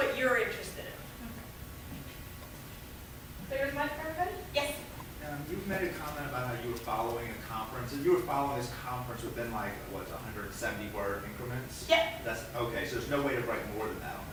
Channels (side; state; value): both; identical; correlation 1.00